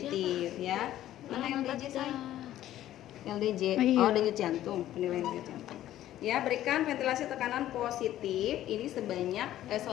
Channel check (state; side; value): quieter; right; 13.1 dB